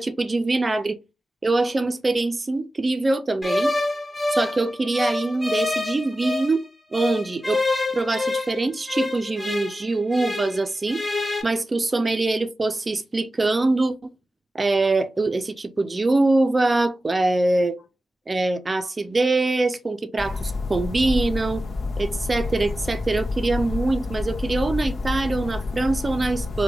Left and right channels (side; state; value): both; normal; correlation 0.94